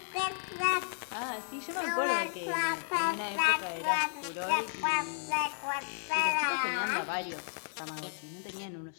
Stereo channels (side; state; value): right; silent; 56 dB below the other